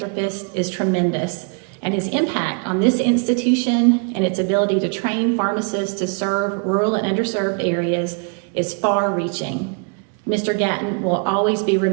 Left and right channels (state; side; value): quieter; left; 38.5 dB